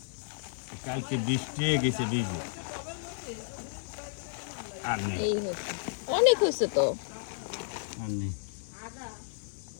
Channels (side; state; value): right; silent; 56 dB below the other